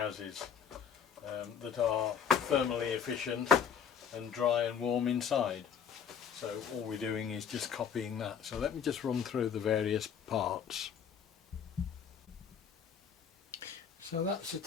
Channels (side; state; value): right; quieter; 7.4 dB